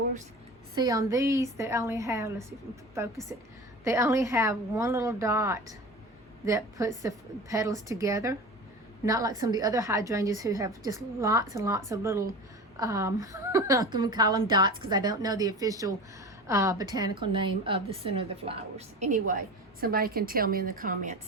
see on these they only have, let's see if I can focus it, they only have one little dot that puts the petals together. Not like some of the other hydrangeas who have just lots and lots of little, I'm going to call them dots because I don't know the official botanical name of the center of the flowers. Anyway, somebody can tell me in the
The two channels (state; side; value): normal; both; correlation 0.33